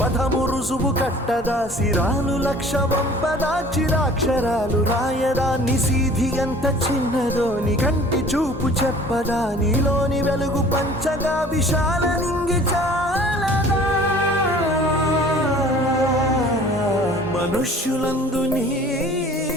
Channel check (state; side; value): normal; both; correlation 0.49